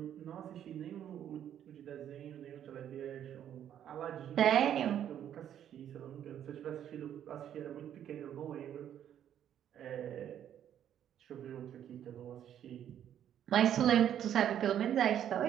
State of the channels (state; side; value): quieter; left; 10.2 dB